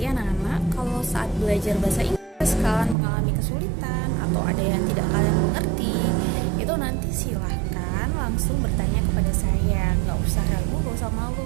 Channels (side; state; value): left; drops out; at 3.0 s